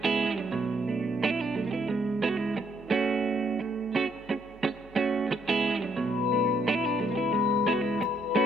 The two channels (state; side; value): noise; right; hum, 24 dB below the sound